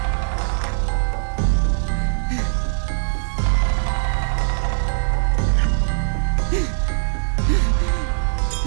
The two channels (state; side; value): silent; left; 60 dB below the other